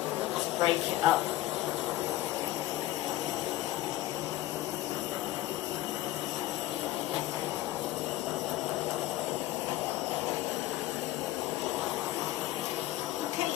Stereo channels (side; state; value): right; quieter; 15.6 dB